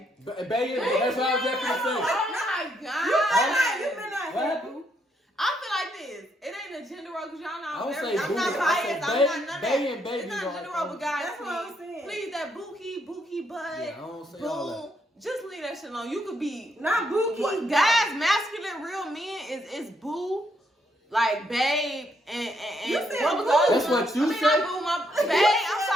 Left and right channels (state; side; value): normal; both; correlation 0.75